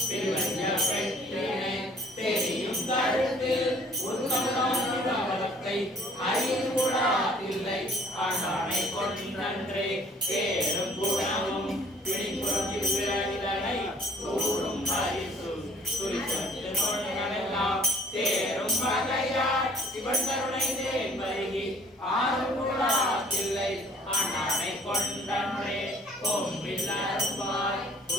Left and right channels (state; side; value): normal; both; correlation 0.55